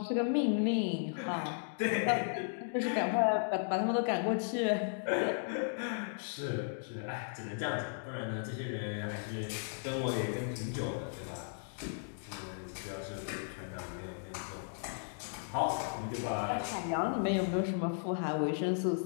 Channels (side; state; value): right; silent; digital silence